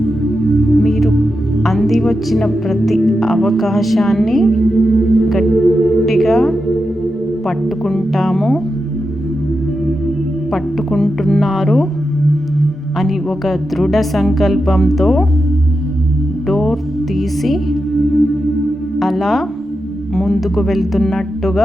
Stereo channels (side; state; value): both; normal; correlation 0.88